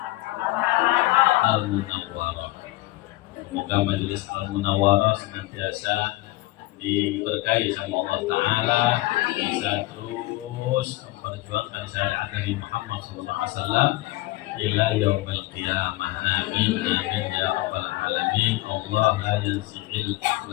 Al-Munawwarah. Semoga majelis Al-Munawwarah senantiasa diberkahi sama Allah ta'ala, bisa terus memperjuangkan syariat dari Muhammad SAW ila yaumil qiyamah. Amin amin ya rabbal alamin. Allah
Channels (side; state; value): right; quieter; 19.5 dB